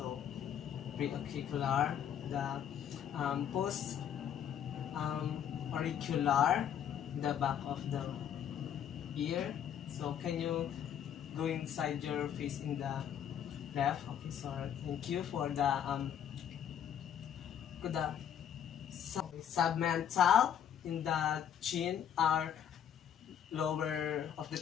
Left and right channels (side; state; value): right; quieter; 9.3 dB